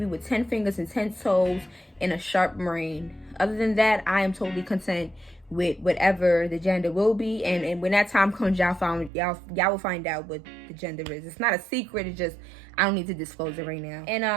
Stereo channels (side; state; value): left; drops out; at 9.1 s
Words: with 10 fingers and 10 toes and a sharp brain. Other than that, I am totally content with whatever the gender will be. And when that time comes, y'all will find out what the gender is. It's not a secret. It's just I don't need to disclose it right now.